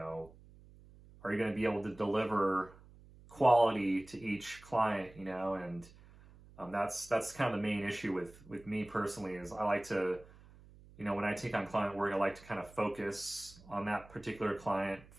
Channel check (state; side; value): noise; right; hum, 22 dB below the sound